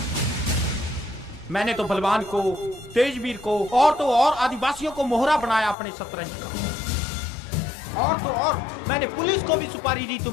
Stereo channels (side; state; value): right; drops out; at 5.8 s